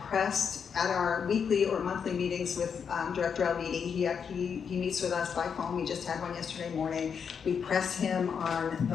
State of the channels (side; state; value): right; quieter; 6.8 dB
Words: pressed at our weekly or monthly meetings with Director Alviti. He meets with us by phone. We just had one yesterday morning. We pressed him on